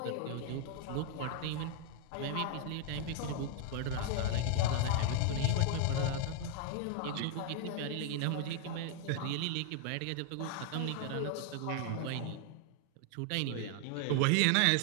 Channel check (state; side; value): different; both; correlation 0.00